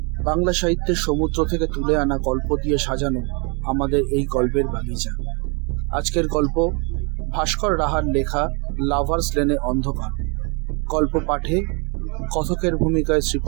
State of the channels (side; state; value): left; quieter; 33.2 dB